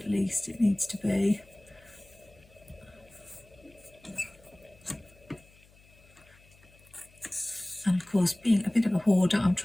least it needs to be. And of course, being a bit of a hoarder, I'm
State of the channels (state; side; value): noise; left; hum, 28 dB below the sound